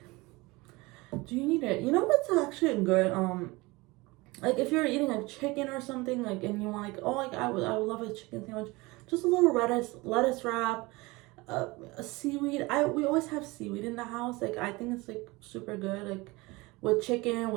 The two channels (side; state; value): left; quieter; 23.0 dB